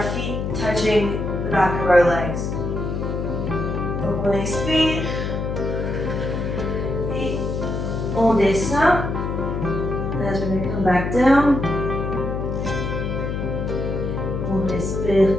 feet touching the back of our legs. Donc on expire. Et on descend. As we're going to come back down. On respire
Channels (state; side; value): noise; left; hum, 2 dB below the sound